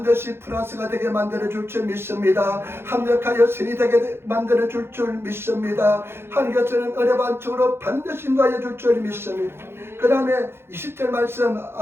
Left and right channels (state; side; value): late; left; 0.11 ms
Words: 플러스가 되게 만들어줄 줄 믿습니다. 합력하여 신이 되게 만들어줄 줄 믿습니다. 하나님께서는 은혜 반쪽으로 반드시 인도하여 줄 줄 믿습니다. 그 다음에 20절 말씀,